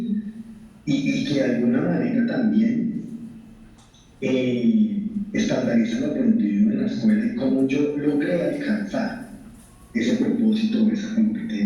Y que de alguna manera también estandarizan el aprendido en la escuela y cómo yo logré alcanzar ese propósito o esa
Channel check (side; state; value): both; identical; correlation 1.00